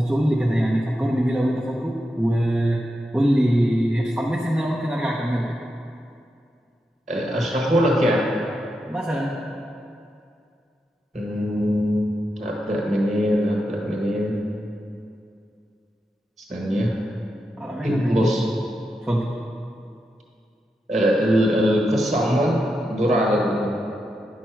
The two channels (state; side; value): normal; both; correlation 0.86